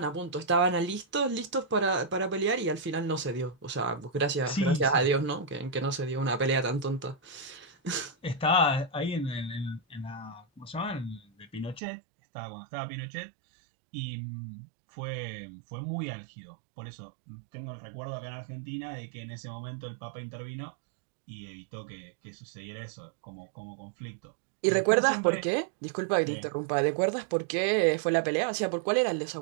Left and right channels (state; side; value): drops out; left; at 11.8 s